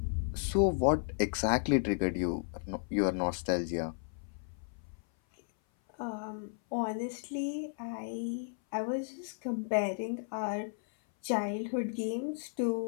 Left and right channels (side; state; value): right; silent; 55 dB below the other